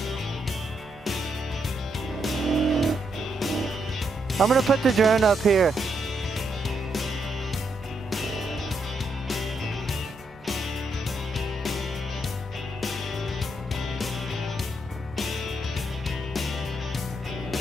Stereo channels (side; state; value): both; normal; correlation 0.79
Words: I'm gonna put the drone up here.